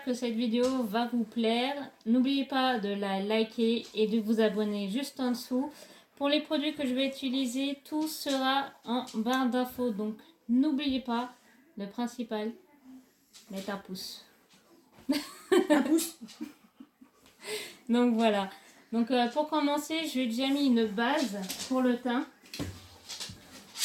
que cette vidéo va vous plaire. N'oubliez pas de la liker et de vous abonner juste en dessous. Pour les produits que je vais utiliser, tout sera en barre d'infos. Donc n'oubliez pas, le principal, mettre un pouce. Un pouce. Donc voilà. Donc pour commencer, j'ai déjà mis une base pour le teint.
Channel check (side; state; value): both; identical; correlation 1.00